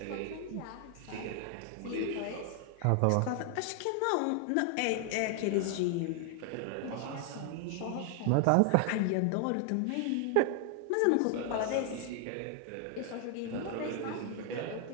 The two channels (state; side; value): different; both; correlation 0.00